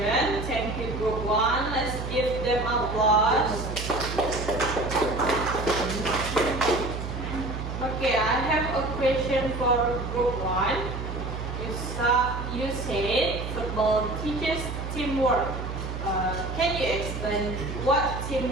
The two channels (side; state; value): right; noise; hum, 6 dB below the sound